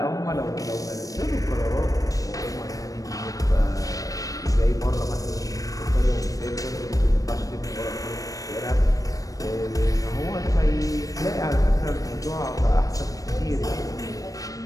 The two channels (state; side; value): late; right; 0.17 ms